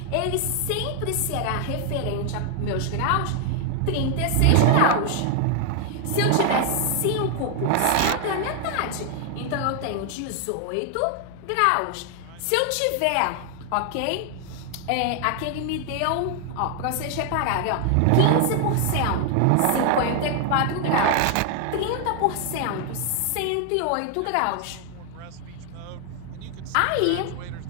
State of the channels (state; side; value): different; both; correlation 0.00